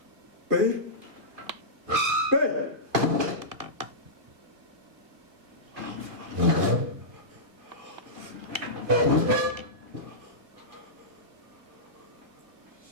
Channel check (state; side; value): late; left; 2.4 ms